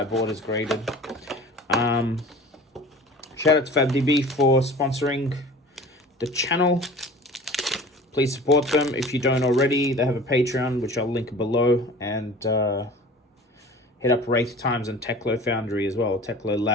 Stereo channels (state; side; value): normal; both; correlation 0.42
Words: is graded. Shout out to FABTCG for sponsoring the channel. Please support them if you don't already. They have a Patreon, which I'll link below, and hit up Wraith Times and Techlo Foundry as well, Techlo